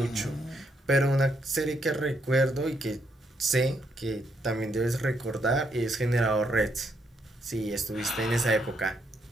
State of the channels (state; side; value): normal; both; correlation 0.76